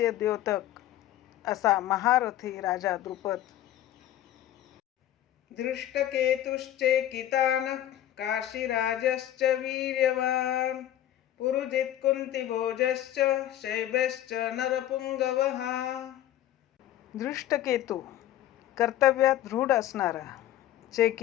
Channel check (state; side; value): quieter; right; 12.6 dB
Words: द्योतक असा महारथी राजा द्रुपद. धृष्टकेतुश्चेकितानः काशीराजश्च वीर्यवान् पुरुजित् कुन्तिभोजश्च शैब्यश्च नरपुंगवः. धृष्टकेतू, कर्तव्यात दृढ असणारा.